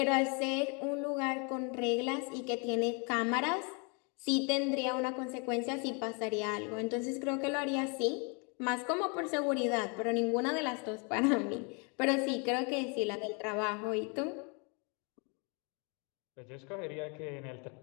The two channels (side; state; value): right; quieter; 34.0 dB